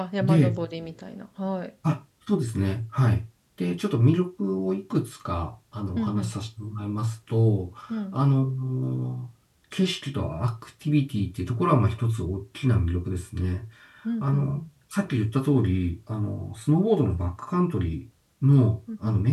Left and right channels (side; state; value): both; identical; correlation 1.00